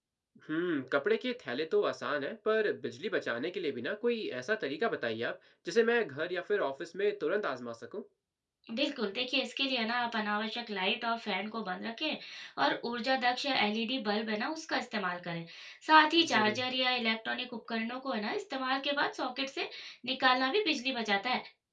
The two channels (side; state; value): both; identical; correlation 1.00